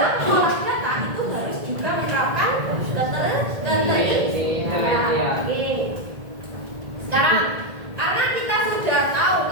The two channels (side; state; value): left; late; 1.8 ms